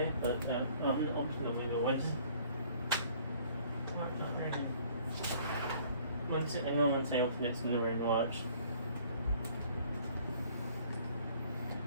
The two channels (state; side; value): inverted; both; correlation -0.56